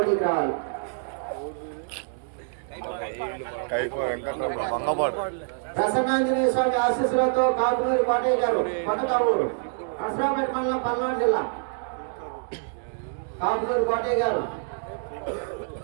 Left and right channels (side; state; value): left; silent; digital silence